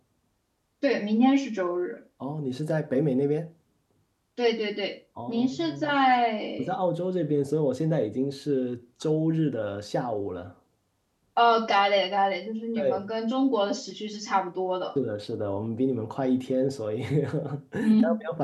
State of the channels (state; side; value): identical; both; correlation 1.00